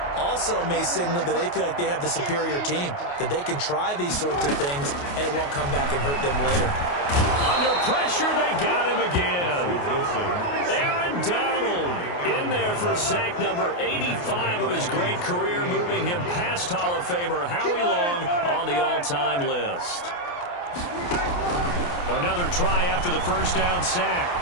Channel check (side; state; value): right; late; 28 ms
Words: Also may signal that they feel like they have the superior team, that they can try these sorts of things, and it won't come back and hurt them later. Under pressure, they got him again. Aaron Donald in there for sack number 85 of his great career, moving him past Hall of Famer Howie Long on the all-time list. Another try after the first down sack.